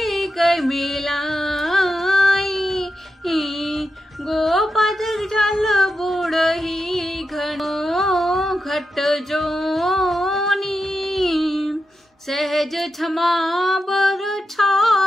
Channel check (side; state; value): both; normal; correlation 0.88